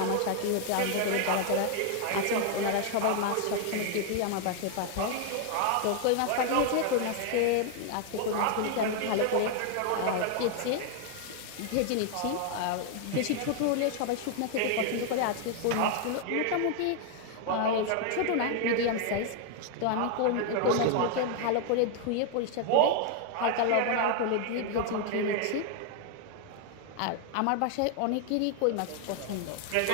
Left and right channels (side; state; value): both; different; correlation 0.00